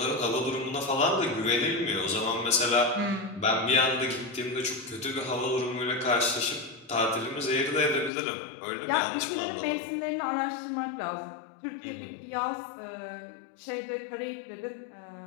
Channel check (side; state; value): right; drops out; at 8.1 s